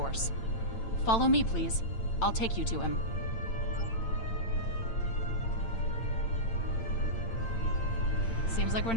Follow me, please. I'll take you to him. Seems like we're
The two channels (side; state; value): right; late; 8.9 ms